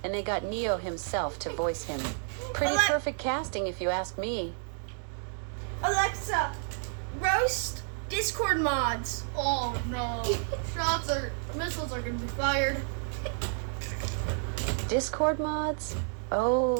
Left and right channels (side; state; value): left; silent; 57 dB below the other